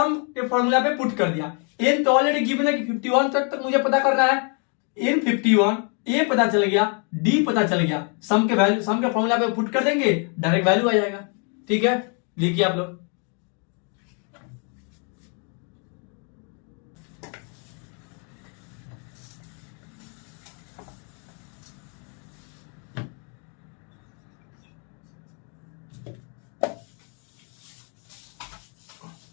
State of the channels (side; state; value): right; quieter; 39.6 dB